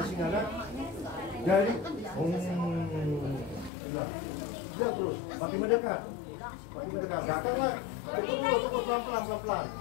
singa kan? Jadi, dia terus makin mendekat. Datanglah, tunggu pelan-pelan.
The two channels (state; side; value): drops out; right; at 3.7 s